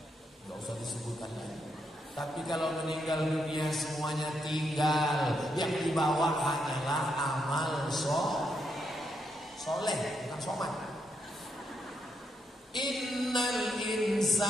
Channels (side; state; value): both; normal; correlation 0.80